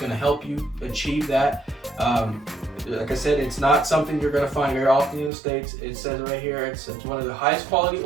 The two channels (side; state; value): left; drops out; at 5.3 s